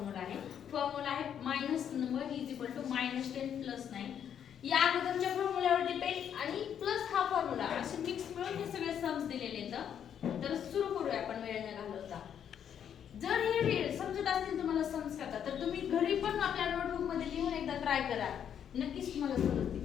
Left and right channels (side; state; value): right; quieter; 8.8 dB